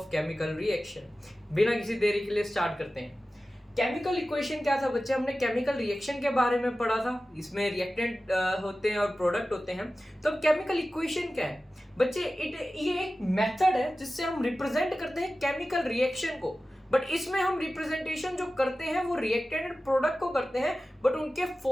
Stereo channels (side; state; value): both; normal; correlation 0.95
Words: chemical reaction. बिना किसी देरी के लिए स्टार्ट करते हैं। केमिकल इक्वेशन क्या था बच्चे? हमने केमिकल रिएक्शन के बारे में पढ़ा था। इसमें रिएक्टेंट होते हैं और प्रोडक्ट होते हैं। तो अब केमिकल इक्वेशन क्या है बच्चे? ये एक मेथड है जिससे हम रिप्रेजेंट करते हैं केमिकल रिएक्शन को। बट इसमें हम रिप्रेजेंटेशन जो करते हैं वो रिएक्टेंट एंड प्रोडक्ट को करते हैं, बट उनके